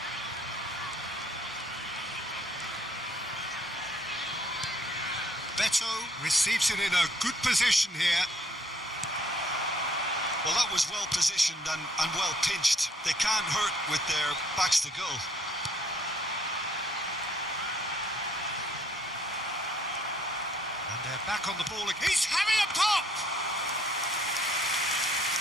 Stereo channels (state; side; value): normal; both; correlation 0.64